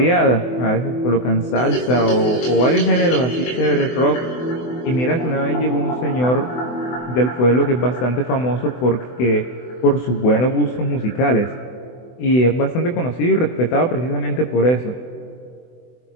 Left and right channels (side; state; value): right; late; 24 ms